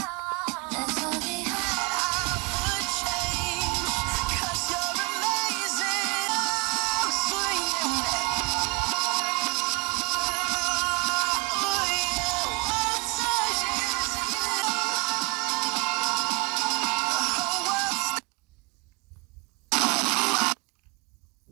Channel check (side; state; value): left; quieter; 30.1 dB